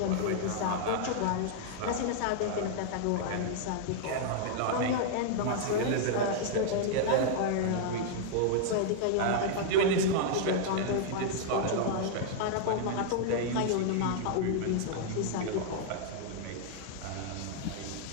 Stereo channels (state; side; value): different; both; correlation -0.01